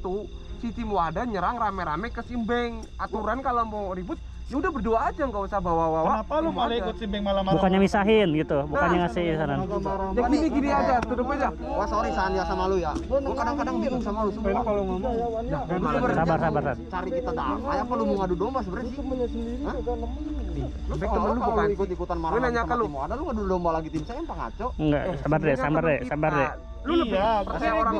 si tim Wadah nyerang rame-rame ke Simbeng. Aturan kalau mau ribut, ya udah berdua aja, nggak usah bawa-bawa. Kenapa lu tim malah Wadah. ikut Simbeng malah marah? Bukannya misahin gitu, bukannya ngasih saran. Ya gini aja, tutup aja. Wah sorry San ya sama lu ya. Gua kadang-kadang bingung sama lu semua. Kalau ngomong Sabar. Cari kita damai apa lu mau ngadu domba sebenarnya sih? Hah? Lu Embeng kalau temen lu kalau bukan. ikut-ikutan marah Gue nanya sama ke lu. tim Wadah, lu ngadu domba lagi tim saya apa ngaco? Enggak, sabar deh. Lu lebih Iya, percaya gua- orang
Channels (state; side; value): identical; both; correlation 1.00